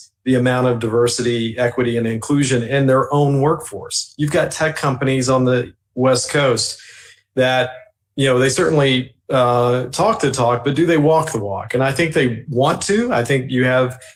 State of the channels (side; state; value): both; identical; correlation 1.00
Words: the amount of diversity, equity, and inclusion in their own workforce. You've got tech companies on the West Coast that, they certainly talk the talk, but do they walk the walk? And I think they want to. I think you have